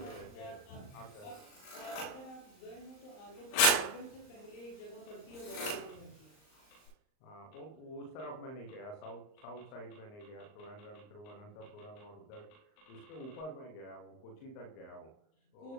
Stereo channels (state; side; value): late; right; 38 ms